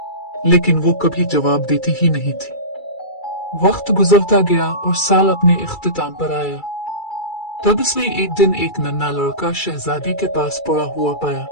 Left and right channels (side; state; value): right; late; 2.3 ms